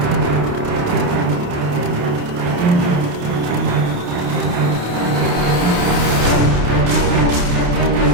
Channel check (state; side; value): late; left; 28 ms